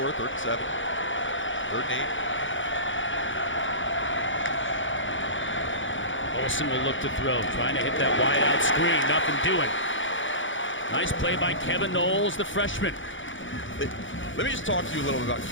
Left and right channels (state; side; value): late; right; 0.56 ms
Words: 3rd and 7, 3rd and 8. Olsen will look to throw, trying to hit that wide out screen, nothing doing. Nice play by Kevin Knowles, the freshman. Let me just talk to you a little bit about